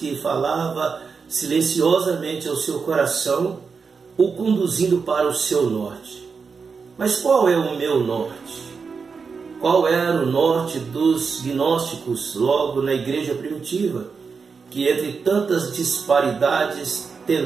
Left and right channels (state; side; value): quieter; left; 5.3 dB